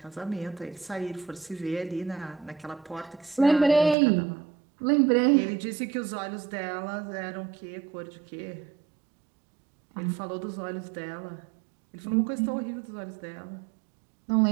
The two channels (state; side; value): drops out; left; at 4.0 s